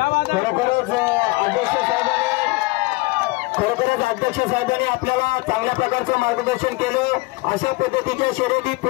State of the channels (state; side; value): quieter; right; 23.8 dB